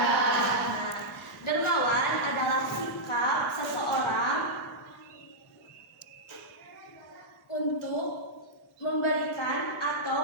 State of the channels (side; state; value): both; normal; correlation -0.08